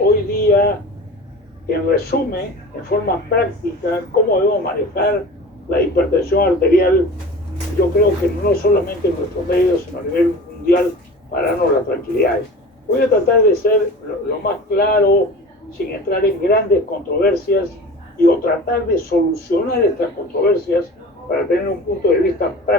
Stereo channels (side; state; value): both; normal; correlation 0.37